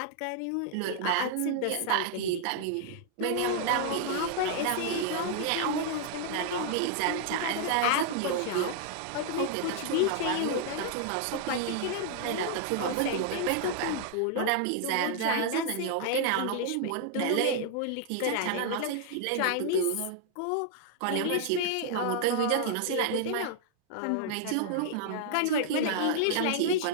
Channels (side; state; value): both; different; correlation -0.01